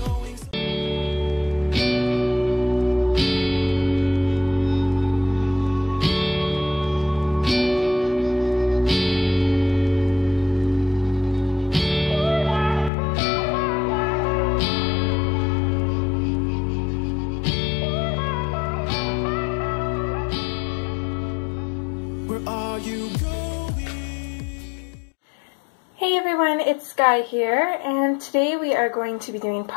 Where are you going? Hey everyone, it's Skyee here, and today we are going to be doing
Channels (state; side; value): drops out; right; at 12.9 s